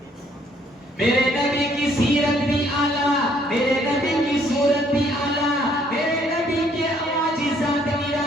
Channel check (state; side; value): normal; both; correlation 0.65